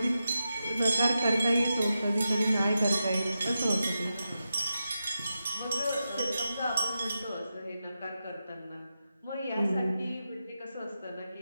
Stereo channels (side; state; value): both; inverted; correlation -0.89